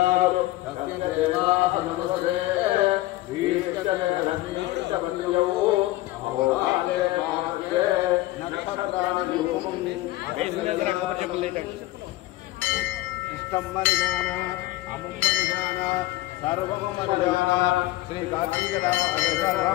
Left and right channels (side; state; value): right; quieter; 17.4 dB